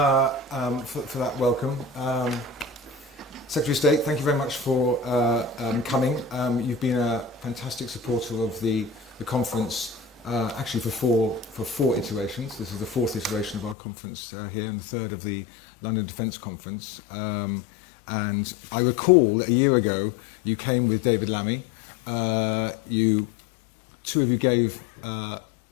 that welcome. Secretary of State, thank you very much for coming. You've been a fantastic supporter of the conference, actually for four iterations. This is the fourth iteration of our conference here, and the third of the London Defence Conference. And I recall that a year ago you came with David Lammy. Two of you gave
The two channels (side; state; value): right; drops out; at 13.8 s